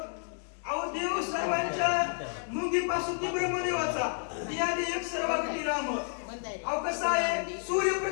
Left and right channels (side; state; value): right; silent; digital silence